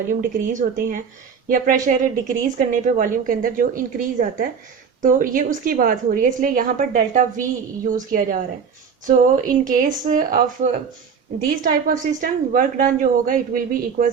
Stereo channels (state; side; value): quieter; left; 6.5 dB